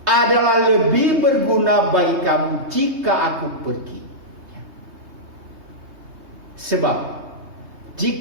adalah lebih berguna bagi kamu jika aku pergi. Sebab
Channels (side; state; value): left; late; 3.2 ms